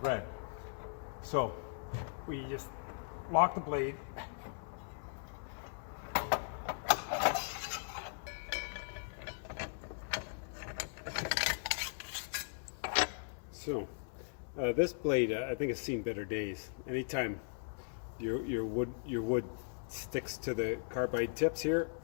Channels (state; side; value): silent; right; 52 dB below the other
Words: So we just lock the blade. So this blade, I think, has seen better days. Anytime your wood sticks to the carbide tips here,